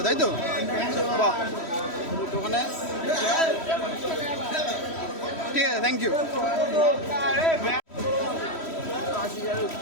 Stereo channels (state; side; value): late; right; 3.1 ms